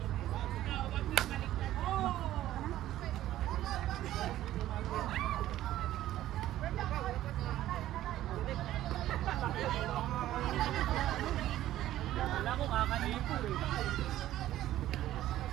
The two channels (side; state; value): left; quieter; 13.8 dB